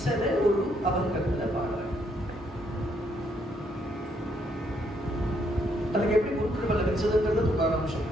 ஒரு அபங்கத்துல பாடுற. தனக்கு எப்படி குரு கிருபை லபிச்சதுங்கிறது துகாராம்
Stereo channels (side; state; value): both; normal; correlation 0.72